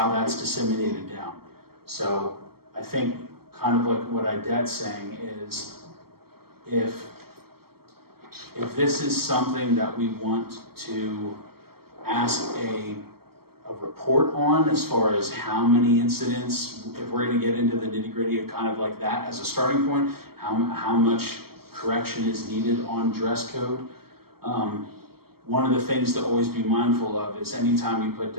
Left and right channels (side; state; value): left; late; 0.95 ms